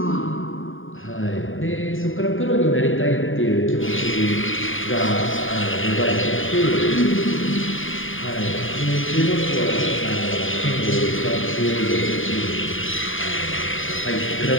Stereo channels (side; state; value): right; late; 0.58 ms